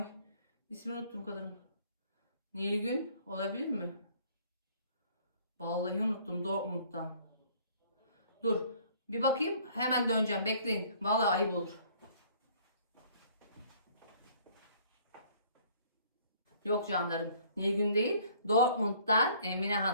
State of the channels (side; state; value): both; inverted; correlation -0.57